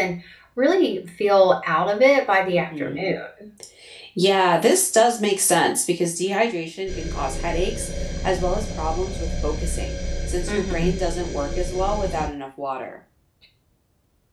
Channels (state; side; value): identical; both; correlation 1.00